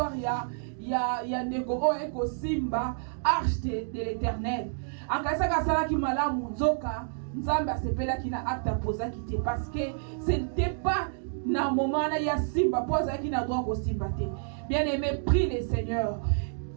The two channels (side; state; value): left; silent; digital silence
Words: ya ndeko oyo eko simba arche de l'Éternel. Akasaka salaki malamu nzoka nzambe asepelaki na acte apozaki te parce que ce n'était pas na moment na ya simba pozaki na droit ko simba te. Bien aimé, prie le Seigneur.